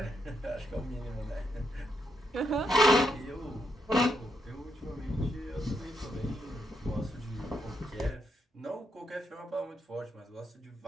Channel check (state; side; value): normal; both; correlation 0.80